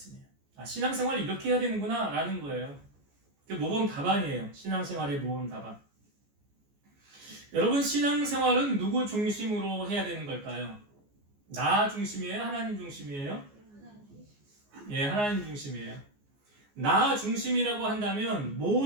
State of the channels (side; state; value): left; late; 14 ms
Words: 신앙생활을 이렇게 해야 되는구나 라는 거예요. 모범 답안이에요. 신앙생활의 모범 답안. 여러분 신앙생활은 누구 중심으로 해야 되는 걸까요? 나 중심이에요? 하나님 중심이에요? 예, 하나님 중심이에요. 나 중심이라고 한다면